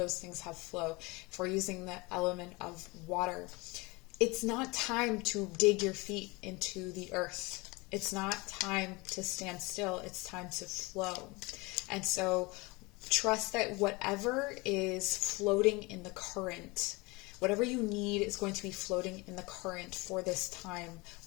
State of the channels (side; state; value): right; quieter; 25.0 dB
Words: things have flow. If we're using the element of water, it's not time to dig your feet into the earth. It's not time to stand still. It's time to flow. And so trust that whatever is floating in the current, whatever you need is going to be floating in the current for this time